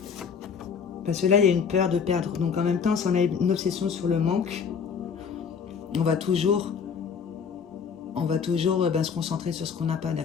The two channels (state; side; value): quieter; right; 6.5 dB